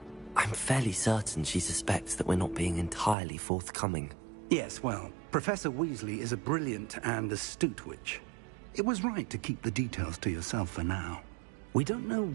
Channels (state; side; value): drops out; left; at 3.2 s